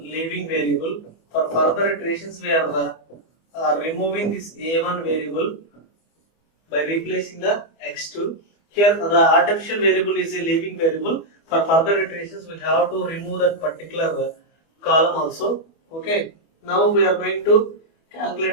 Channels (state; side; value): late; right; 25 ms